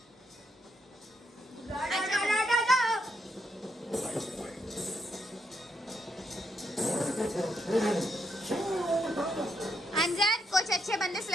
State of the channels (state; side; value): normal; both; correlation 0.77